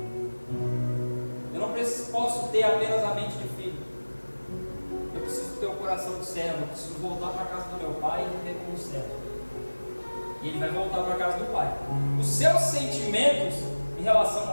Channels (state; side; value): inverted; both; correlation -1.00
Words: eu não posso ter apenas a mente de filho, eu preciso ter o coração de servo, eu preciso voltar para a casa do meu pai e viver como servo. E ele vai voltar para a casa do pai. Os seus sentimentos em relação